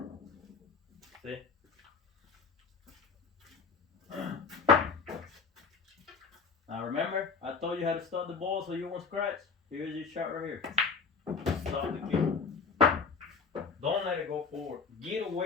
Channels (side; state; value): right; quieter; 5.3 dB